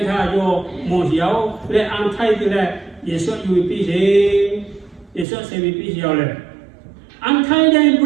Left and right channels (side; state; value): left; drops out; at 5.2 s